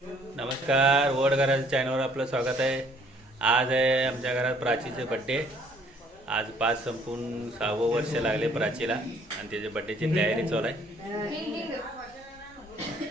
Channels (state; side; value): normal; both; correlation 0.60